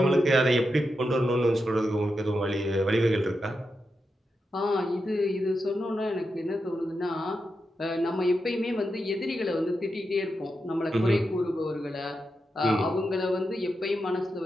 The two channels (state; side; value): normal; both; correlation 0.87